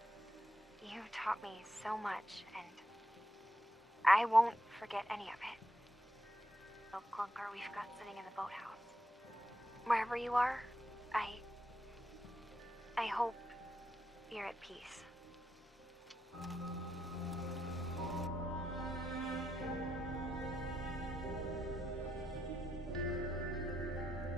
You taught me so much, and I won't forget any of it. The clunker we've got sitting in the boathouse. Wherever you are, I hope you're at peace.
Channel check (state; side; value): normal; both; correlation 0.83